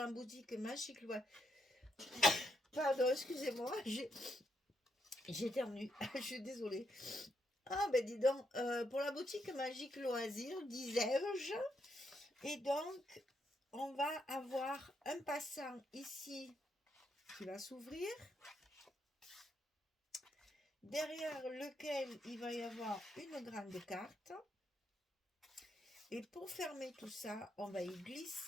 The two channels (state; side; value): normal; both; correlation 0.78